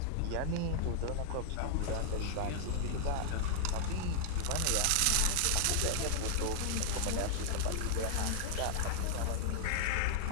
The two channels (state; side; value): different; both; correlation -0.01